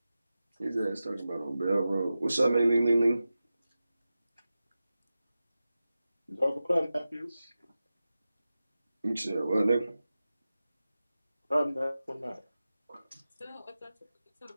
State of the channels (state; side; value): inverted; both; correlation -0.94